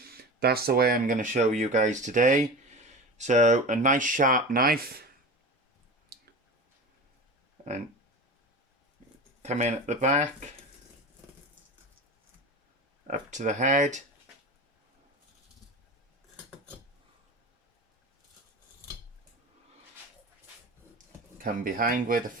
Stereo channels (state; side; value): normal; both; correlation 0.30